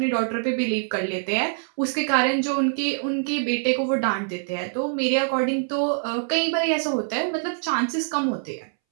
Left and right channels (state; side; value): silent; left; 62 dB below the other